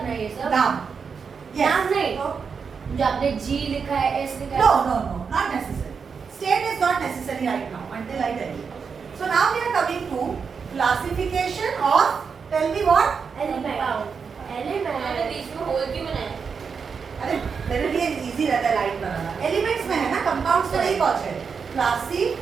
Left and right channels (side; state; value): left; quieter; 5.8 dB